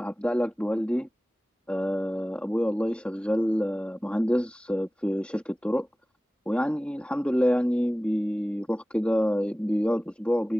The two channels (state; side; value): normal; both; correlation 0.98